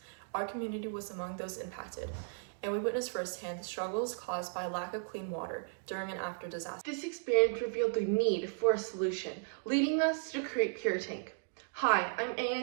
Our community was among those impacted, and we witnessed firsthand the struggles caused by a lack of clean water during and after disaster. This experience revealed the need for a solution, leading us to create PuriTank. Hi, I'm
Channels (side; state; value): left; silent; digital silence